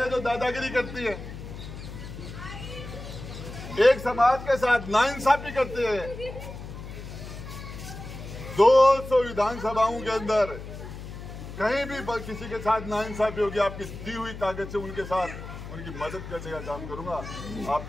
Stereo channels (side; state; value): left; noise; hum, 11 dB below the sound